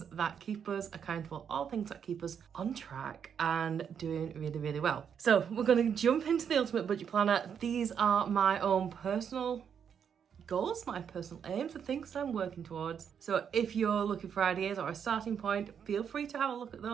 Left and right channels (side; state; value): left; quieter; 7.7 dB